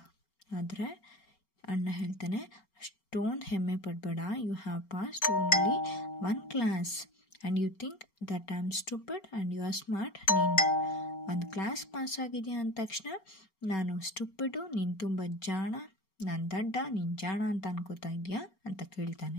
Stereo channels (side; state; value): right; late; 5.3 ms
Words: ಆದರೆ ಅಣ್ಣ ಹೇಳ್ತಾನೆ, ಅಷ್ಟೊಂದು ಹೆಮ್ಮೆ ಪಡಬೇಡ. You have passed only 1 class and you think that I am stupid and you are smart. ನೀನು 1 ಕ್ಲಾಸ್ ಪಾಸ್ ಆಗಿದೆಯಾ ಅಂದ ತಕ್ಷಣ ನಾನು ಸ್ಟುಪಿಡು, ನೀನು ತುಂಬ ಜಾಣ, ನಾನು ದಡ್ಡ, ನೀನು ಜಾಣ ಅಂತ ಅನ್ಕೋತಾ ಇದೆಯಾ ಅಂತ